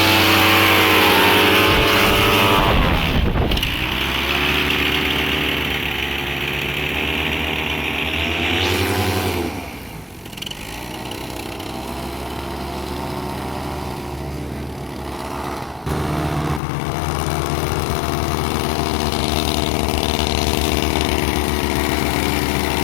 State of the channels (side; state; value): right; drops out; at 16.6 s